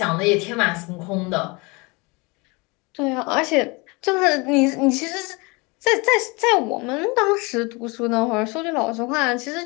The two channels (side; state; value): right; quieter; 27.2 dB